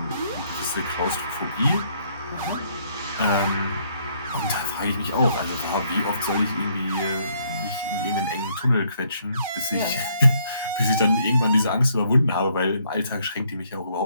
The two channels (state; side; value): inverted; both; correlation -0.69